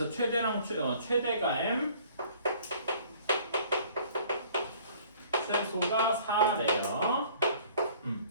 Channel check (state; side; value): inverted; both; correlation -0.54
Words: 최대랑 최대가 M 최소가 4래요.